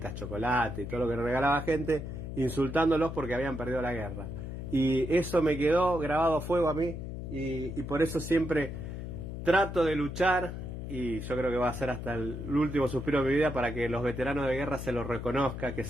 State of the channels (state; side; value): noise; left; hum, 7 dB below the sound